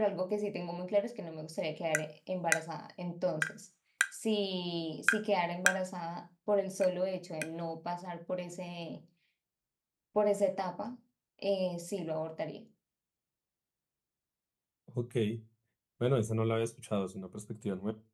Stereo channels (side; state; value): both; identical; correlation 1.00